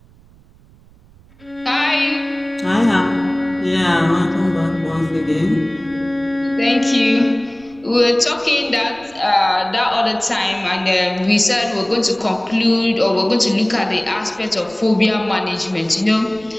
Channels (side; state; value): right; noise; rumble, 27 dB below the sound